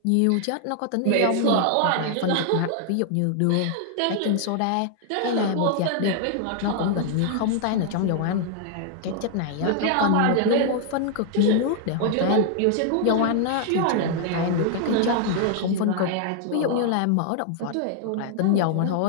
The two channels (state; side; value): different; both; correlation 0.00